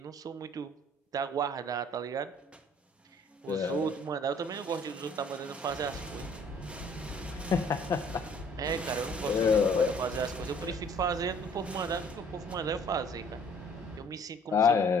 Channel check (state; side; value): normal; both; correlation 0.56